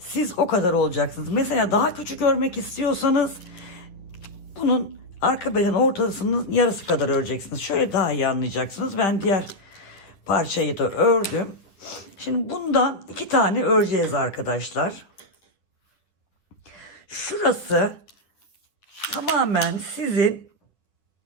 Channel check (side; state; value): right; late; 10 ms